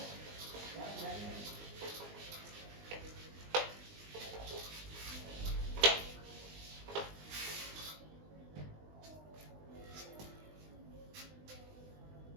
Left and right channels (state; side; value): late; left; 20 ms